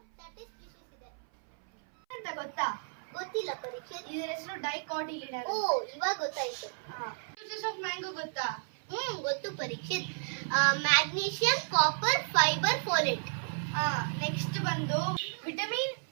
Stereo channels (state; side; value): silent; left; 56 dB below the other